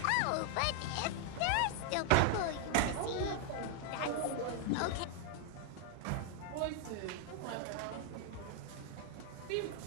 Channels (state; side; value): different; both; correlation 0.00